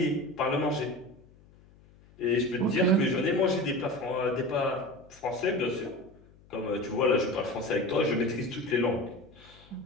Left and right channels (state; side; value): noise; left; hum, 26 dB below the sound